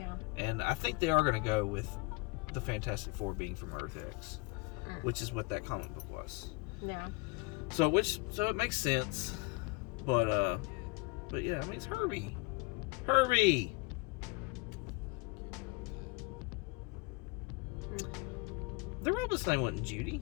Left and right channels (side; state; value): right; quieter; 26.4 dB